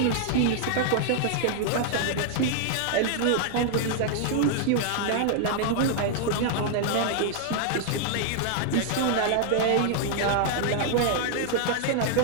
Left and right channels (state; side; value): different; both; correlation -0.01